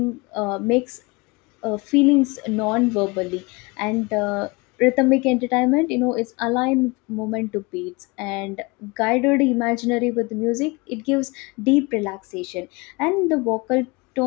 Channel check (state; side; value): quieter; right; 26.3 dB